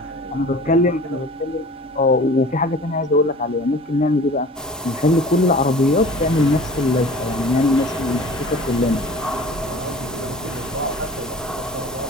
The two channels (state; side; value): normal; both; correlation 0.42